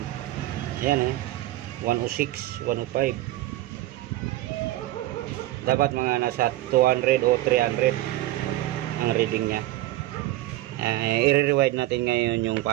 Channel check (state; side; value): quieter; left; 16.3 dB